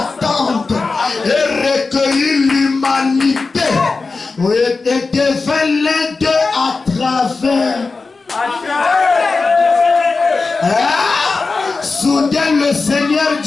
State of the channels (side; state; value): right; quieter; 4.1 dB